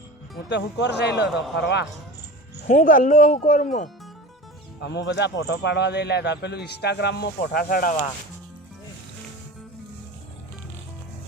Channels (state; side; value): normal; both; correlation 0.33